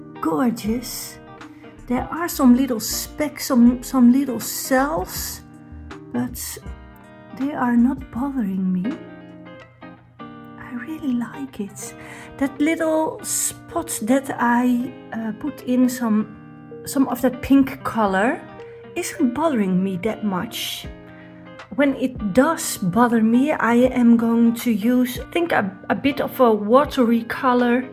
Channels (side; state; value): both; identical; correlation 1.00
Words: gorgeous. There are some little specks, some little cells, but they are not bothering me. I really like it. That little spot that I put in some of that pink color isn't bothering me that much. When it does bother me, I am going to use, I think, a bit of a watery color